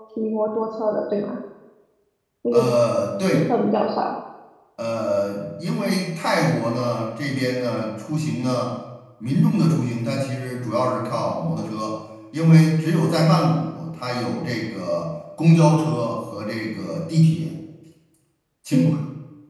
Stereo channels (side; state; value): both; identical; correlation 1.00